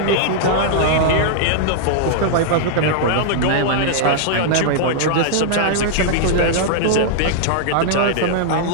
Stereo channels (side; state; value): both; different; correlation -0.01